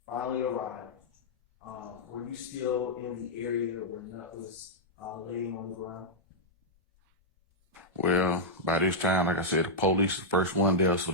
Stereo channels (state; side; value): normal; both; correlation -0.08